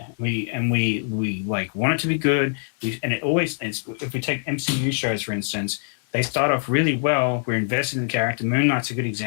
we want it to be good. If we take MCU shows for instance, they start off really well. We're invested in the character. Moon Knight's a good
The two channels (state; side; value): silent; right; digital silence